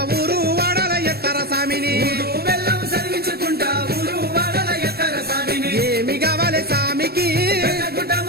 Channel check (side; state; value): left; late; 0.46 ms